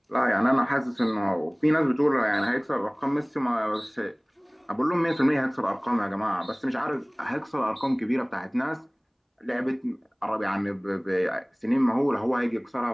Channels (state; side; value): identical; both; correlation 1.00